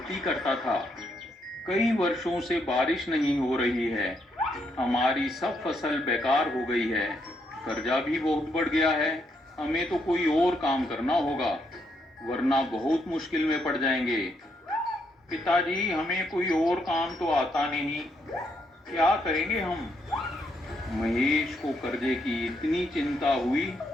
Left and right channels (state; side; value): normal; both; correlation 0.76